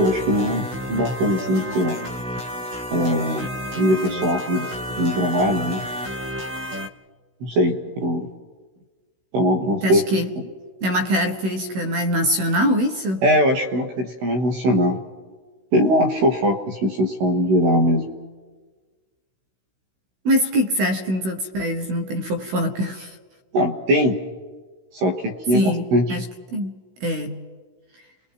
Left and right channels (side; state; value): left; late; 16 ms